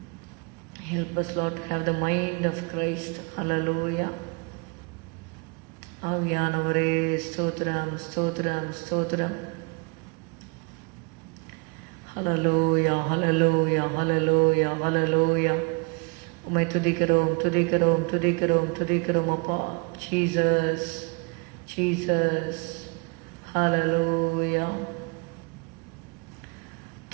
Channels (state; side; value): quieter; left; 31.7 dB